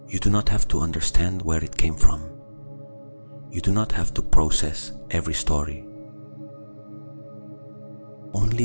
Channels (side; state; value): both; inverted; correlation -1.00